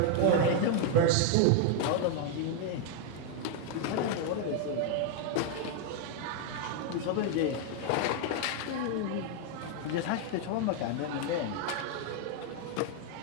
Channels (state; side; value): different; both; correlation 0.00